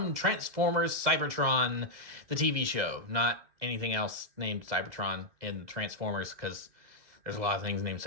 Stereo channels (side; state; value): left; late; 2.0 ms